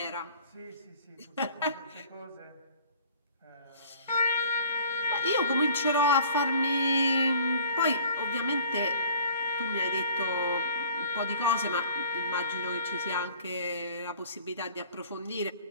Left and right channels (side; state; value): both; inverted; correlation -0.50